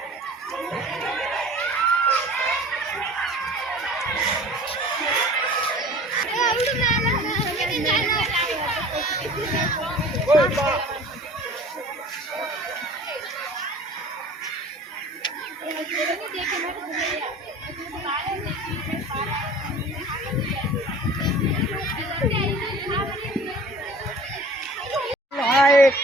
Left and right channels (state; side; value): normal; both; correlation 0.44